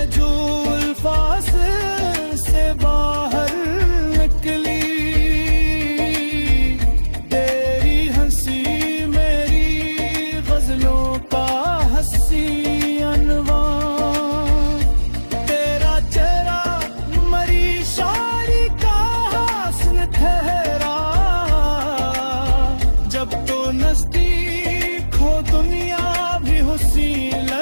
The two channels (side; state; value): both; inverted; correlation -1.00